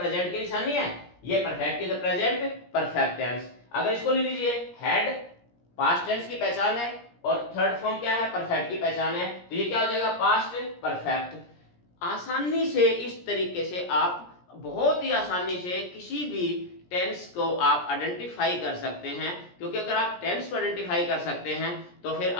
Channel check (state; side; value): late; right; 17 ms